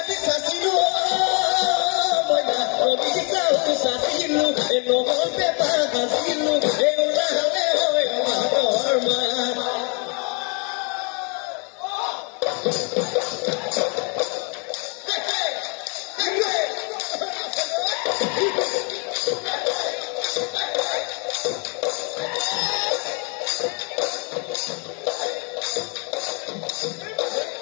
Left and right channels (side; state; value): right; quieter; 35.0 dB